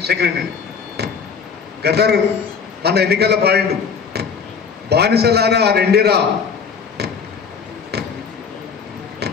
సెక్రటరీ. గద్దరు మన ఎన్నికల్లో పాడిండు, బానిసలారా రెండిరా,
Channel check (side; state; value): right; quieter; 6.1 dB